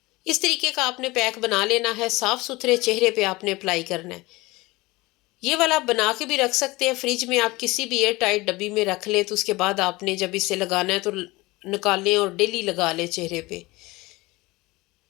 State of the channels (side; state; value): right; quieter; 21.7 dB